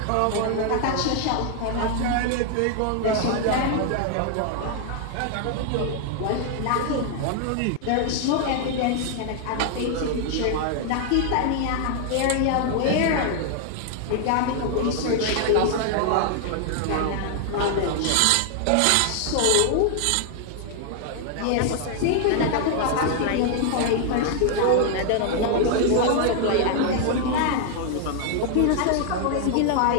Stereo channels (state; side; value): different; both; correlation 0.00